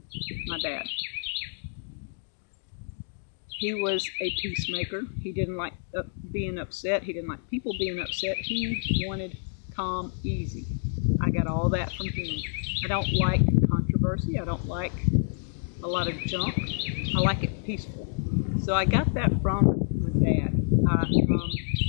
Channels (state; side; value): silent; right; digital silence